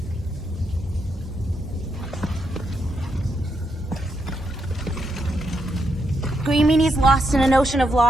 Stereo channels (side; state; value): both; normal; correlation 0.81